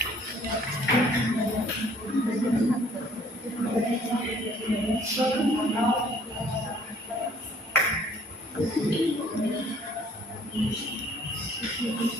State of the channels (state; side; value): normal; both; correlation 0.58